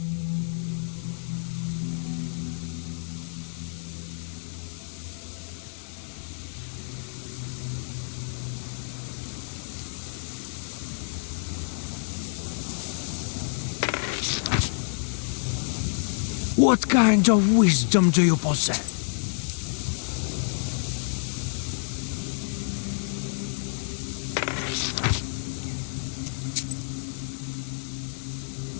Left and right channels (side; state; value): right; silent; 59 dB below the other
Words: What kind of wisdom do you possess?